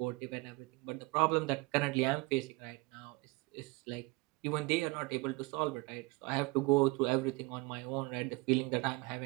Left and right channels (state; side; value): quieter; left; 24.8 dB